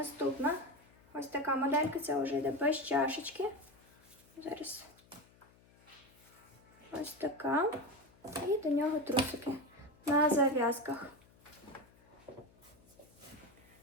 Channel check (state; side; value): noise; left; hum, 28 dB below the sound